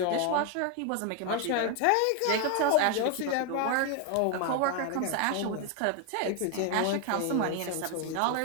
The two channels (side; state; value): both; different; correlation 0.01